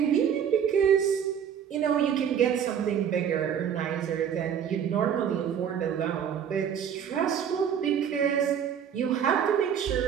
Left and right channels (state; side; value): quieter; left; 8.4 dB